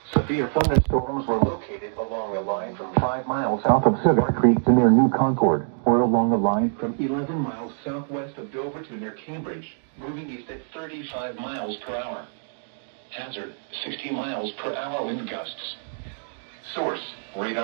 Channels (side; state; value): left; silent; digital silence